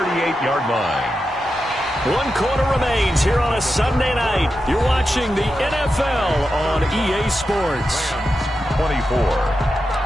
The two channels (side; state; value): both; normal; correlation 0.89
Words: line. 1 quarter remains here on a Sunday night. You're watching the NFL on EA Sports. 24.